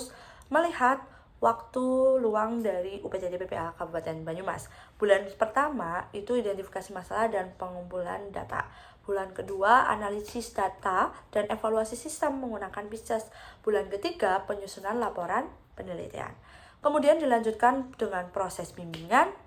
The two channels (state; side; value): identical; both; correlation 1.00